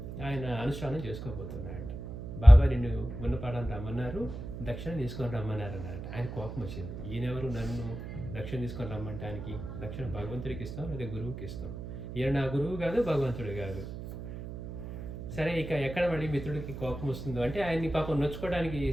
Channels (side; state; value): right; noise; hum, 9 dB below the sound